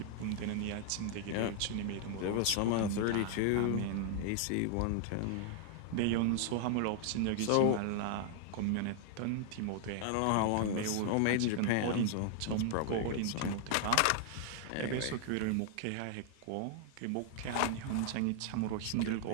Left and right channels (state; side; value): different; both; correlation 0.00